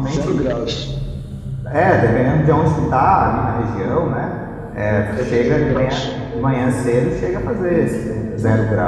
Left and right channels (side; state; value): both; identical; correlation 1.00